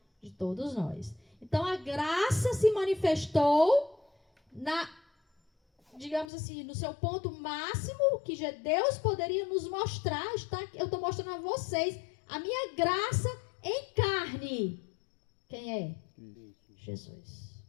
de todos nós. Então a graça se manifestou digamos assim, no seu ponto máximo, que Deus poderia nos mostrar. Eu estou mostrando a vocês a minha graça em carne. Quem é? Jesus.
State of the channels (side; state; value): right; drops out; at 6.2 s